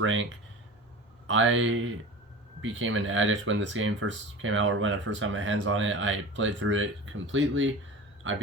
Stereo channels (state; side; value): normal; both; correlation 0.34